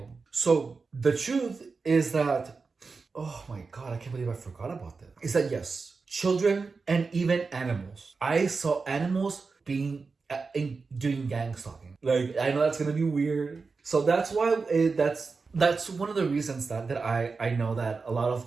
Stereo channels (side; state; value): left; quieter; 4.5 dB